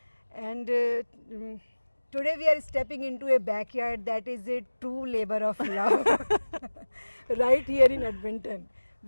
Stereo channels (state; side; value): inverted; both; correlation -1.00